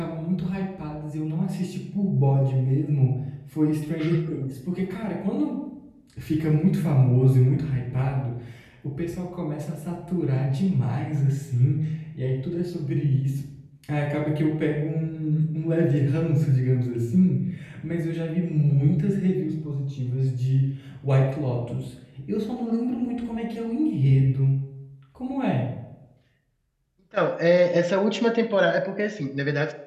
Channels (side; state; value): both; identical; correlation 1.00